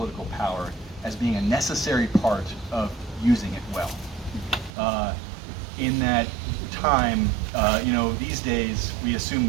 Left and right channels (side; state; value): left; drops out; at 4.7 s